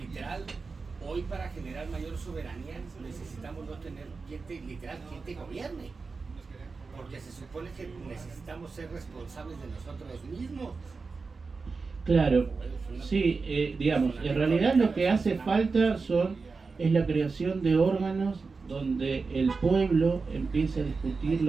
hoy para generar mayor soberanía necesitamos no tener quien te gobierne. Porque se supone que necesitamos ser responsables de nosotros mismos. claro, sí, digamos, en realidad lo que hace falta es la creación de órganos donde el pueblo empiece a discutir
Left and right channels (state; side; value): quieter; left; 4.4 dB